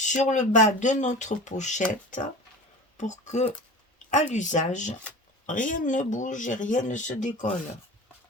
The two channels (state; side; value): normal; both; correlation 0.35